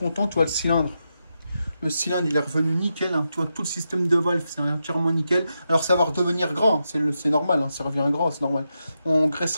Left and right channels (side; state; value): both; inverted; correlation -0.86